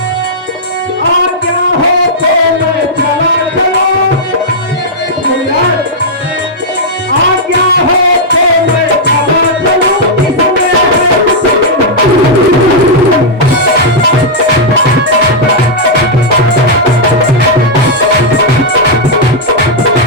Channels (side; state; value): both; normal; correlation -0.07